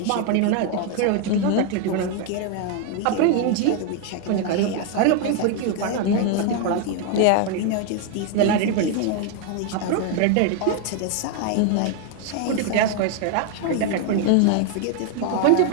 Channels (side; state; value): both; different; correlation 0.01